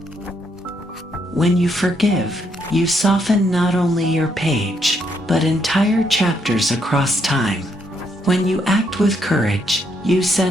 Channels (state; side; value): normal; both; correlation 0.75